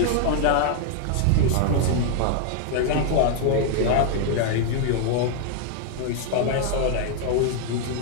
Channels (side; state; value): both; different; correlation 0.00